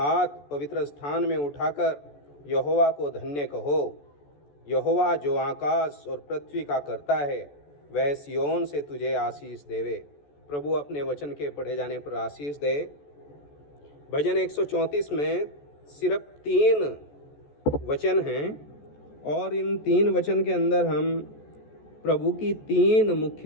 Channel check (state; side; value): late; right; 14 ms